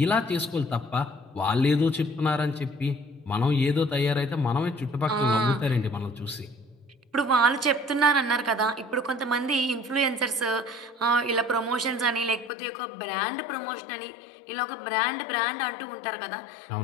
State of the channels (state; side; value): drops out; right; at 12.5 s